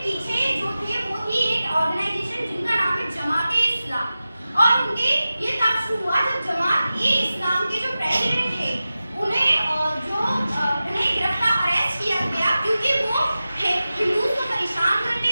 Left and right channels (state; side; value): inverted; both; correlation -0.94